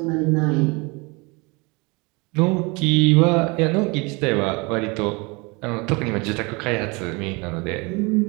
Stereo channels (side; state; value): left; quieter; 27.7 dB